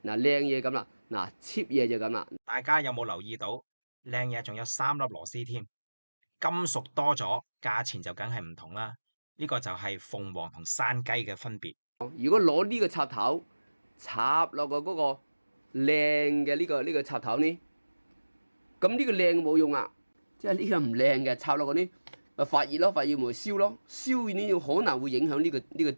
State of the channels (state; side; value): inverted; both; correlation -1.00